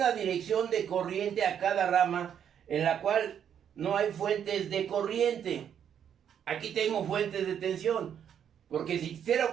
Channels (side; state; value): left; quieter; 8.8 dB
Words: dirección de corriente a cada rama en la cual no hay fuentes de corriente. Aquí tengo fuentes de tensión, porque si hiciera